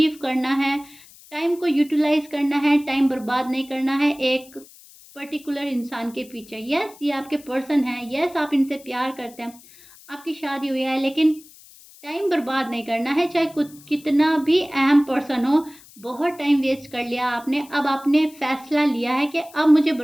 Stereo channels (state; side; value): noise; left; hiss, 23 dB below the sound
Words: करना है, टाइम को यूटिलाइज करना है, टाइम बर्बाद नहीं करना है एक पर्टिकुलर इंसान के पीछे। यस, ये आपके पर्सन है, यस आप इनसे प्यार करते हैं, आपकी शादी हुई है, लेकिन टाइम बर्बाद नहीं करना है, चाहे कुछ कितना भी अहम पर्सन हो। बहुत टाइम वेस्ट कर लिया आपने, अब आपने फैसला लिया है कि अब मुझे